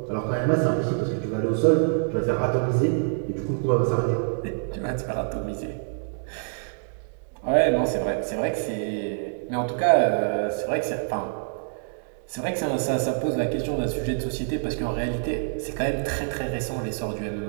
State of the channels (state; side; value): silent; left; digital silence